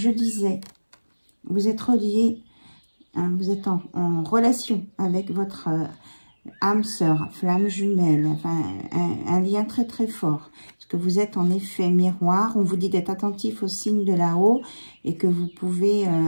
disais, vous êtes relié, hein, vous êtes en relation avec votre âme sœur, flamme jumelle, enfin un lien très très fort. Parce que vous êtes en effet miroir. On vous dit d'être attentif aux signes de là-haut et que vous pouvez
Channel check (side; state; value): both; inverted; correlation -1.00